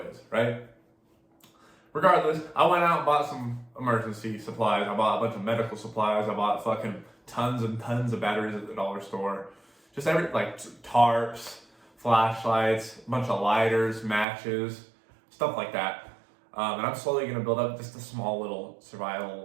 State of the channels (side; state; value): left; drops out; at 14.2 s